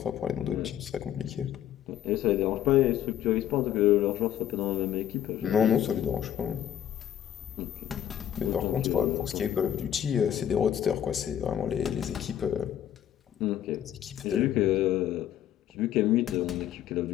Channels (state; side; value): quieter; right; 10.8 dB